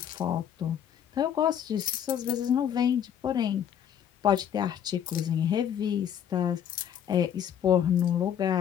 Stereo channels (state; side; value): quieter; right; 9.3 dB